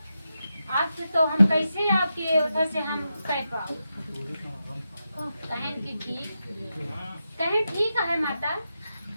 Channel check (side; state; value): both; inverted; correlation -0.88